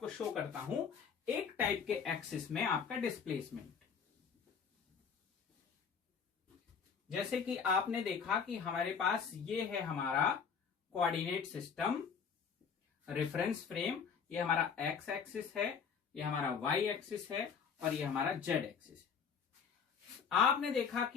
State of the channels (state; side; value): quieter; right; 6.6 dB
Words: शो करता हूं एक टाइप के एक्सिस में आपका डिस्प्लेसमेंट। जैसे कि आपने देखा कि हमारे पास ये है हमारा कोऑर्डिनेट सिस्टम, रेफरेंस फ्रेम, ये हमारा एक्स एक्सिस है, ये हमारा वाई एक्सिस है, और ये हमारा जेड एक्सिस है। आपने देखा